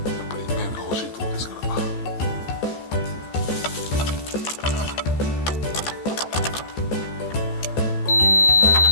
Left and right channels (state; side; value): late; right; 14 ms